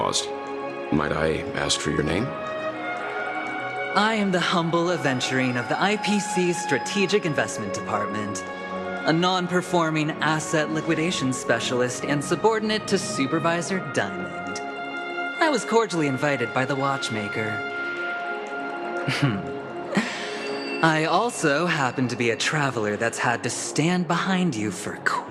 Might I ask for your name? I am the humble aventurine of the IPC's Strategic Investment Department, a non-performing asset liquidation specialist and subordinate to Supervisor Diamond. I was cordially invited by the watchmaker. I also happen to be a traveler that's had to stand behind you for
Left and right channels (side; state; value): both; identical; correlation 1.00